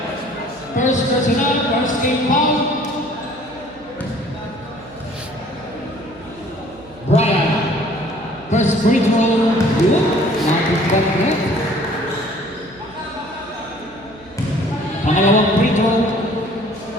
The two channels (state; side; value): noise; right; hum, 25 dB below the sound